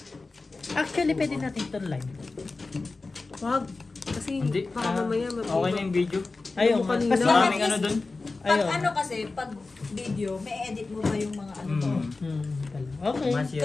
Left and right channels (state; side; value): quieter; right; 3.7 dB